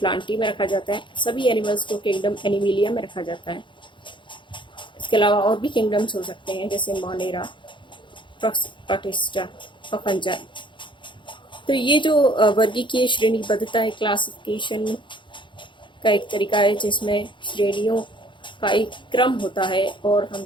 में रखा जाता है, सभी एनिमल्स को किंगडम एनिमिलिया में रखा जाता है। इसके अलावा और भी किंगडम्स हो सकते हैं, जैसे मोनेरा, प्रोटिस्टा और फंजाई। तो ये जो वर्गीकीय श्रेणीबद्धता है, क्लासिफिकेशन का एक तरीका है जिसमें श्रेणियों का एक क्रम होता है और हम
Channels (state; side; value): late; right; 0.23 ms